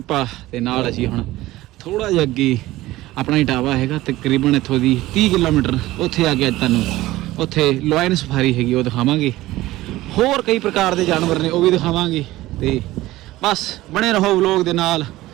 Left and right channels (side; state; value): left; quieter; 17.1 dB